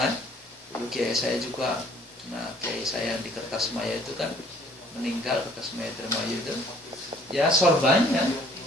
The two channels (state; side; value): normal; both; correlation 0.58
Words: Dulu kiai saya juga. Nah, kiai saya yang di Kertas Maya itu kan meninggal, Kertas Maya Termayu itu. Ya sorbannya.